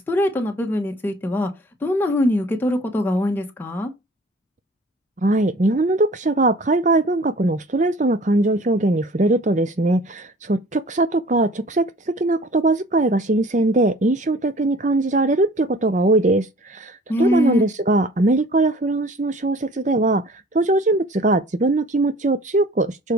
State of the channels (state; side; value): normal; both; correlation 0.49